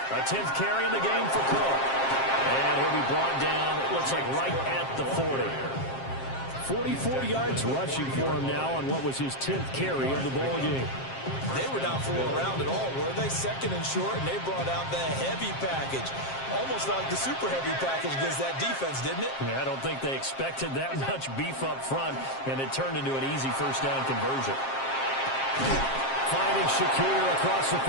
A 10th carry in the game for Cook. And he'll be brought down, it looks like right at the 40. 44 yards rushing for him now on what was his 10th carry of the ball game. They were not fooling around at all, were they? 2nd and short, and they brought out the heavy package. Almost like the super heavy package against that defense, didn't it? Yeah, I don't think they expected that much beef up front, and it turned into an easy first down conversion. Finding Shakir across the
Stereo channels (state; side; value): late; right; 7.5 ms